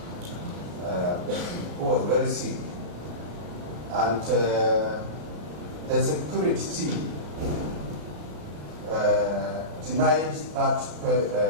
who was very sick, and the security team denied that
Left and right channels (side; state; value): left; late; 33 ms